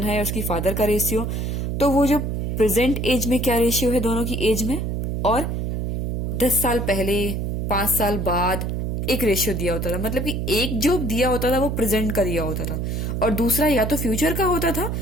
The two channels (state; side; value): noise; right; hum, 1 dB below the sound